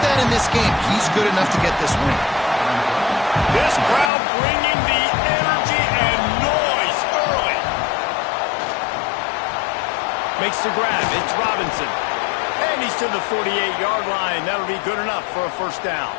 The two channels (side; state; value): right; drops out; at 4.1 s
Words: in this game, he's good enough to get this win. This crowd bringing the energy and noise early. Makes the grab. It's Robinson. And he's to the 48-yard line. That'll be good enough for a first down.